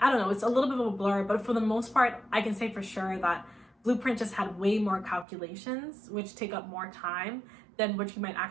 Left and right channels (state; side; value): drops out; left; at 5.2 s